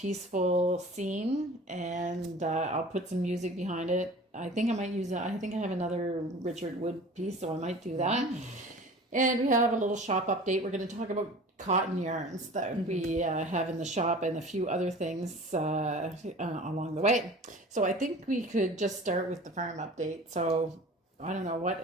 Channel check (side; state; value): both; normal; correlation 0.42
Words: scene. And I'll put some music behind it. I think I might use it. I think I have another Richard Wood piece, so I might do that. And we have a little shop update. We're going to talk about cotton yarns that we have in the shop and a few other things along the way. So I think we could just start with the farm update. So I don't